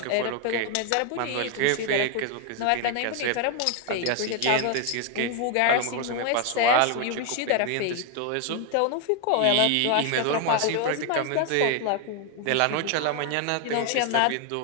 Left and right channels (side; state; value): both; different; correlation 0.01